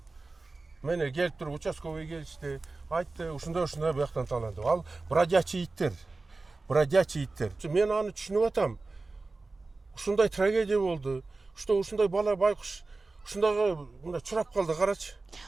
Мені келіп тұрып, участковый келішті, айтты, ушундай бұл жақтан таланды. Ал бродячий иттер. Мен аны түшініп атам. Ушундай трагедия болды. Ушундай бала байкуш, ушундайга мына чурап калды, карачы.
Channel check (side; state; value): left; quieter; 3.6 dB